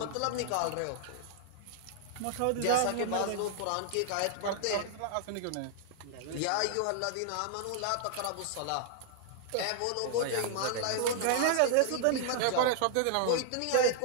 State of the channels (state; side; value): different; both; correlation -0.01